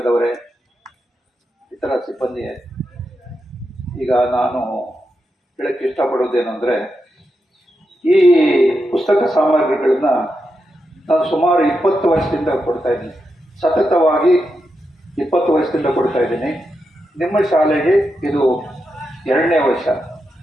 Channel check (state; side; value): normal; both; correlation 0.86